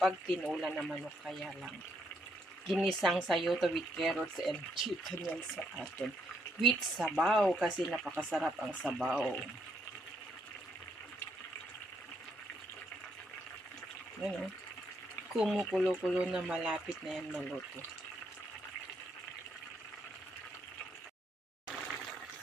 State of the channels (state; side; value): normal; both; correlation 0.75